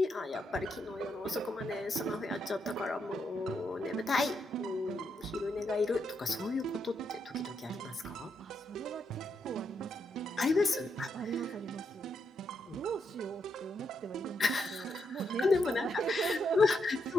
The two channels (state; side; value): normal; both; correlation 0.80